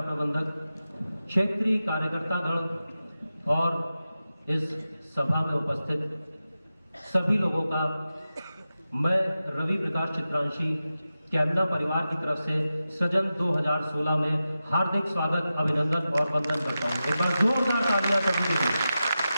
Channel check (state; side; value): inverted; both; correlation -0.92